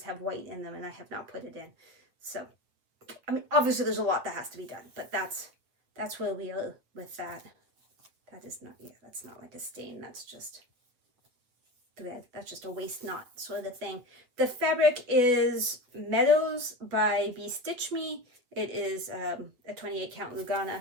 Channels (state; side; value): late; left; 8.4 ms